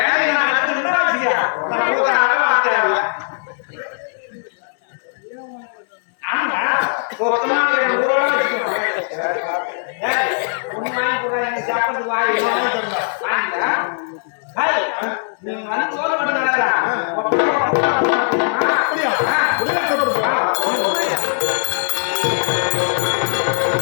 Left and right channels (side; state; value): right; silent; digital silence